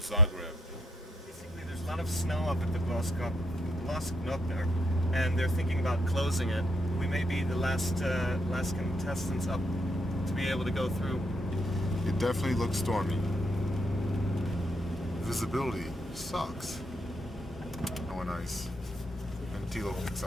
Basically, there's a lot of snow up at the Glasknot there, and they're thinking about closing it. We may be the last contestants up to be able to go through. It definitely looks stormy. Visibility sucks. Oh, nice. And Thilo picks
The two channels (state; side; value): normal; both; correlation 0.73